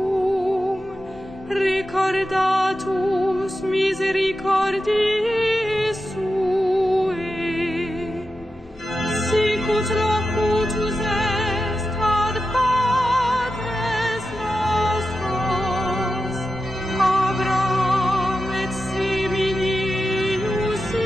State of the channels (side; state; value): both; normal; correlation 0.90